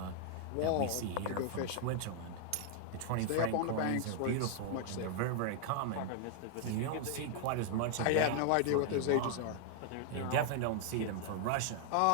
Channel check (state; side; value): different; both; correlation 0.00